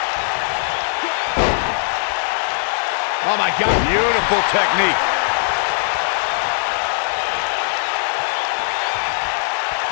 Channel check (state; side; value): silent; right; 66 dB below the other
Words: Oh my God, beautiful technique.